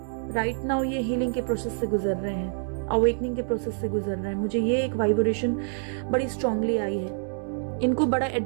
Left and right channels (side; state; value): left; silent; digital silence